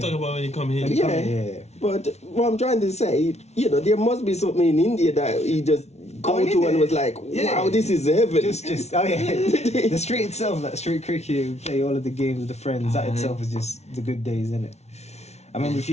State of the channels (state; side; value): late; right; 0.31 ms